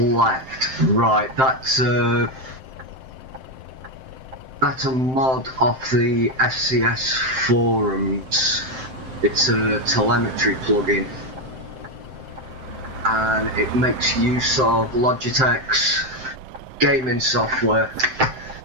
Right, that's a mod off the FCS forums. It's a telemetry plugin, and it makes use of Logitech's gaming software,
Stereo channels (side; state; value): left; late; 7.7 ms